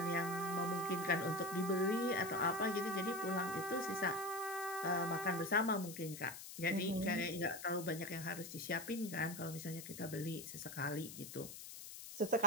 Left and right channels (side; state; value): left; noise; hiss, 11 dB below the sound